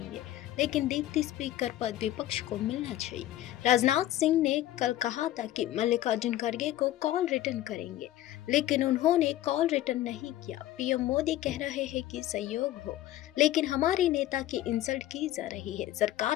लेकिन डिप्टी स्पीकर पद विपक्ष को मिलना चाहिए। राजनाथ सिंह ने कल कहा था कि मल्लिकार्जुन खड़गे को कॉल रिटर्न करेंगे, लेकिन उन्होंने कॉल रिटर्न नहीं किया। पीएम मोदी कह रहे हैं कि सहयोग हो, लेकिन हमारे नेता की इंसल्ट की जा रही है।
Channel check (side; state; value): right; quieter; 14.0 dB